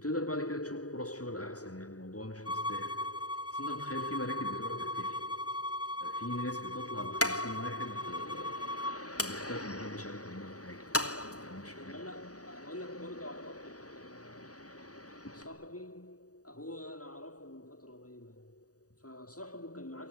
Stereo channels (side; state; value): right; late; 0.67 ms